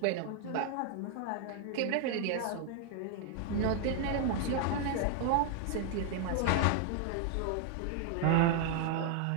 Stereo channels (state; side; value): different; both; correlation 0.00